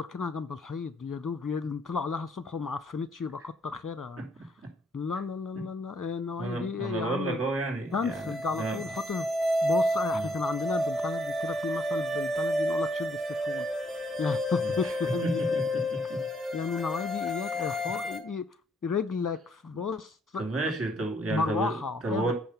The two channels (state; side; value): normal; both; correlation 0.69